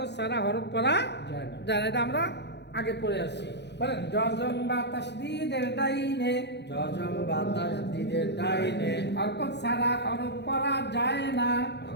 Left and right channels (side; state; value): right; late; 0.50 ms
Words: ছাড়া হরফ পড়া যায় না যায় না। এটা আমরা আগে পড়ে আসছি। বলেন জজম বা তাসদীদের ডাইনে জজম বাতাস দিদের ডাইনে হরকত ছাড়া হরফ পড়া যায় না।